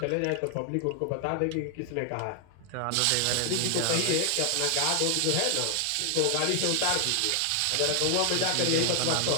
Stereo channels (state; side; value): different; both; correlation 0.00